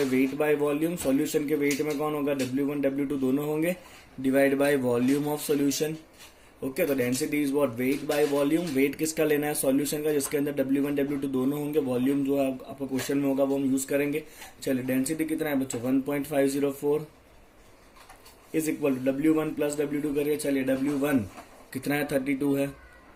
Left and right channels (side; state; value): both; identical; correlation 1.00